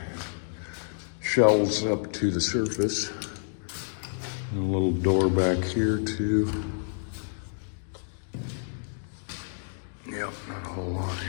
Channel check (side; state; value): right; silent; digital silence